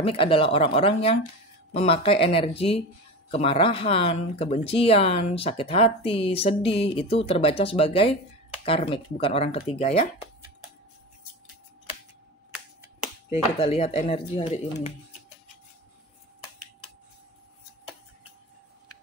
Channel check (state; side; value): normal; both; correlation 0.27